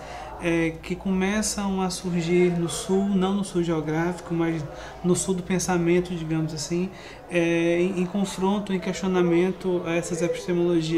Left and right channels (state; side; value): identical; both; correlation 1.00